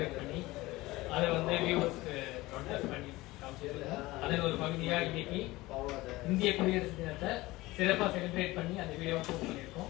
பண்ணி அதை வந்து வியூவர்ஸ்க்கு ப்ராட்காஸ்ட் பண்ணி காமிச்சிருக்கோம். அதில் ஒரு பகுதியாக இன்னைக்கு இந்திய குடியரசு தினத்தை சிறப்பாக செலிப்ரேட் பண்ணி அந்த வீடியோவை போஸ்ட்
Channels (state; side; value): quieter; right; 19.6 dB